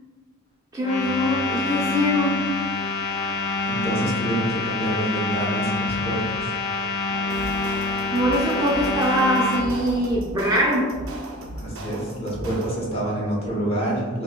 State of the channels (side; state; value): both; normal; correlation 0.39